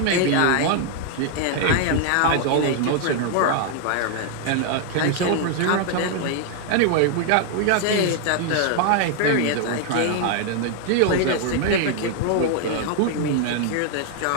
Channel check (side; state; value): both; different; correlation 0.00